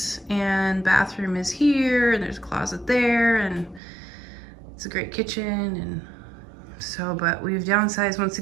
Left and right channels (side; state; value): left; drops out; at 3.8 s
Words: And bathroom is here, and there's a closet there, and it's a great kitchen. And so, but we've downsized once